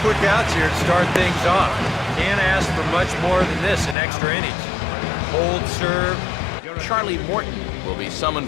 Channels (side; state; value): right; drops out; at 4.0 s